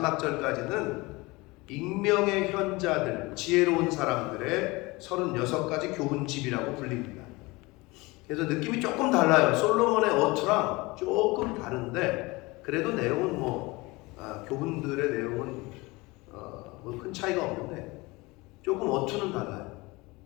절까지는 익명의 현자들, 지혜로운 사람들의 36가지 교훈집이라고 불립니다. 그래서 느낌이 조금 달라요. 솔로몬의 어투랑 조금 다른데 그래도 내용은 교훈들의 내용은 큰 차이가 없는데 조금 어투는 달라요.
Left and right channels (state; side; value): quieter; right; 23.3 dB